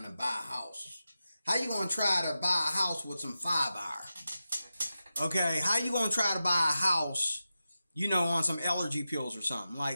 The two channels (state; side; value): inverted; both; correlation -0.92